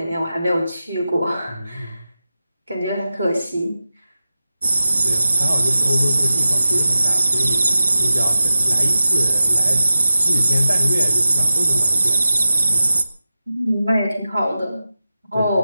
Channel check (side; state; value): both; inverted; correlation -0.93